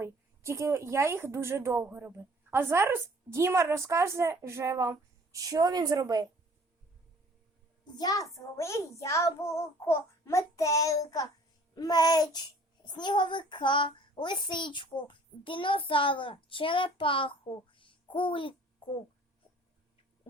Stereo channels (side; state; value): both; normal; correlation 0.53